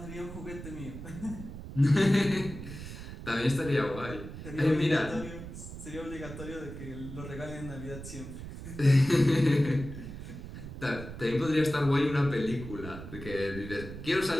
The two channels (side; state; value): right; noise; rumble, 11 dB below the sound